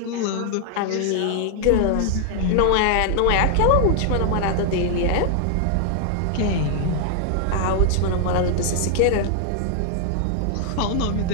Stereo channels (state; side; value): different; both; correlation 0.00